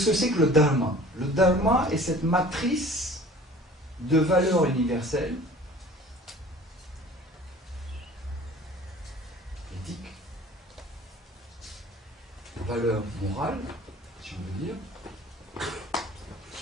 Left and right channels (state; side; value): normal; both; correlation 0.47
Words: que c'est que le dharma? Le dharma est cette matrice de valeurs universelles, éthiques, valeurs morales, si on veut dire,